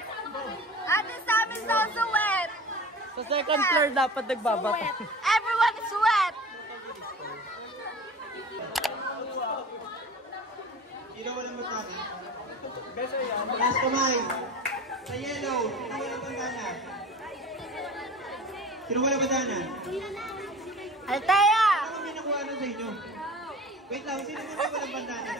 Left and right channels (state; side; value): normal; both; correlation 0.38